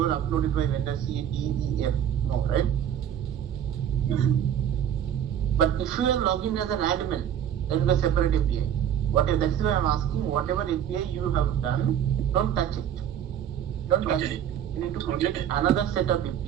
uploaded by vendor C, D, E, F. No, right? But if you are logging as an admin, then the separate API. That's why I'm asking, whatever API you have done, don't touch it. Don't touch it. You need to create another set of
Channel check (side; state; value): left; quieter; 9.7 dB